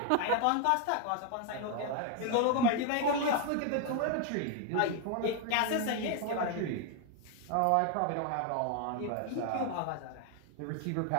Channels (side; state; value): both; different; correlation 0.01